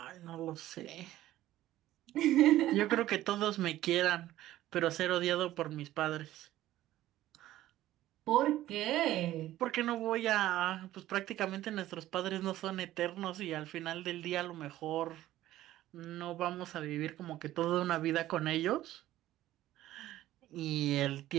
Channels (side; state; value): left; quieter; 14.5 dB